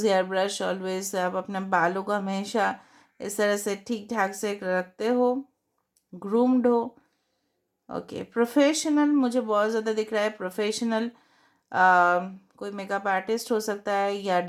hair brush always, आप अपने बालों को हमेशा इस तरह से ठीक ठाक से रखते हो, ग्रूम्ड हो, ओके। प्रोफेशनल मुझे बहुत ज़्यादा दिख रहा है, प्रोफेशनल कोई मेकअप आर्टिस्ट हो सकता है या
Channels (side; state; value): both; identical; correlation 1.00